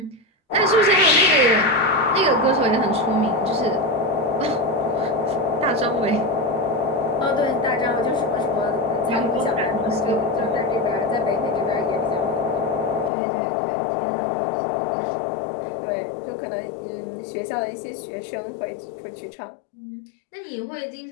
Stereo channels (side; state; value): right; drops out; at 13.1 s